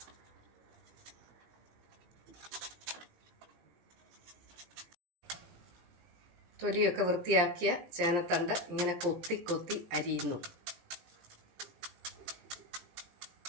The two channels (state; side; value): late; left; 18 ms